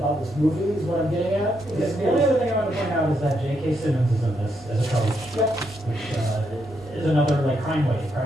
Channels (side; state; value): both; normal; correlation 0.78